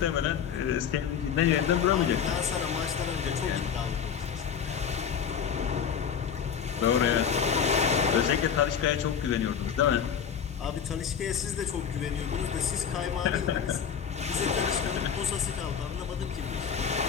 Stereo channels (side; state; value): right; quieter; 7.7 dB